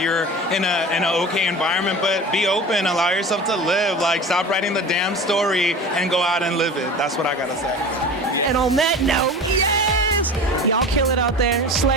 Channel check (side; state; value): both; normal; correlation 0.35